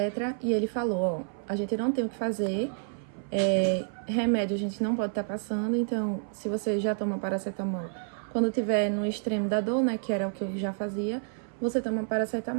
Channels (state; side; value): silent; left; 58 dB below the other